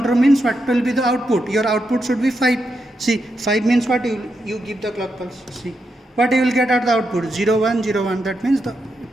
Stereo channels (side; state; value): both; normal; correlation 0.84